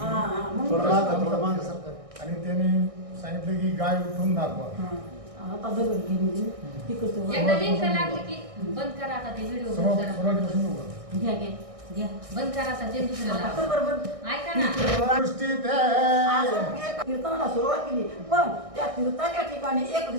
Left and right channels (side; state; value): left; late; 1.6 ms